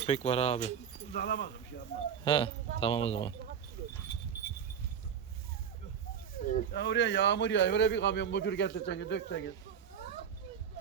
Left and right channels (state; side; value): quieter; left; 7.9 dB